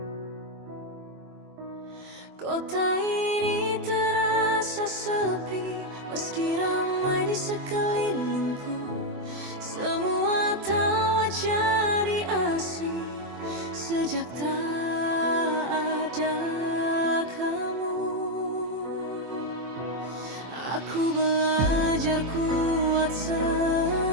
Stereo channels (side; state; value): left; late; 24 ms